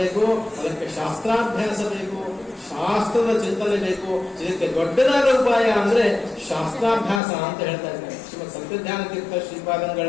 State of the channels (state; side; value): drops out; right; at 7.2 s